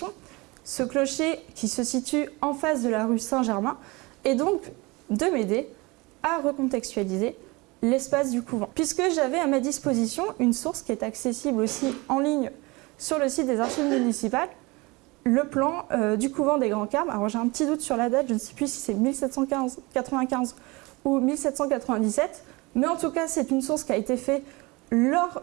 ce clocher qui se situe en face de la rue Saint-Germain, et donc de m'aider à recontextualiser l'espace du couvent. Puisque j'avais à ma disposition une source qui est accessible aussi en ligne sur le site des archives municipales, le plan du couvent des Grands Carmes. Alors j'ai un petit doute sur la date, je ne sais plus si c'est 1795 ou 1797, mais en tout cas c'est une source qui a été faite lors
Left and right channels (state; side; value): quieter; left; 24.5 dB